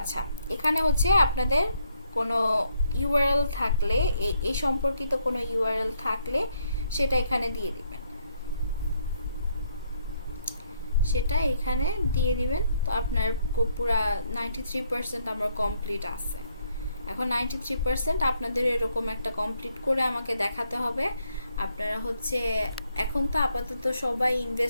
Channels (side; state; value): both; inverted; correlation -0.73